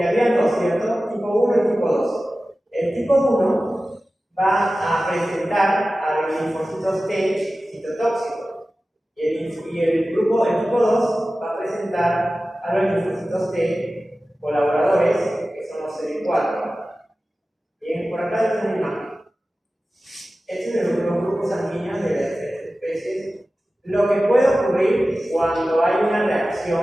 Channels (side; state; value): both; normal; correlation 0.95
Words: había dos, ¿cierto? Tipo 1 y tipo 2. El tipo 1 va a presentar a los linfocitos T citotóxicos. Y el tipo 2 va a presentar a los linfocitos T colaboradores, que son los CD4. Bien, por acá está una imagen. Estos son los grupos sanguíneos de las especies. Lo que puede ocurrir cuando hay una